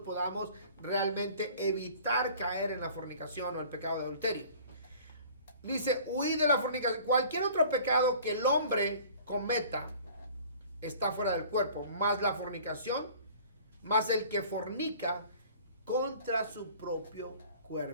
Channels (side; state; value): both; inverted; correlation -0.48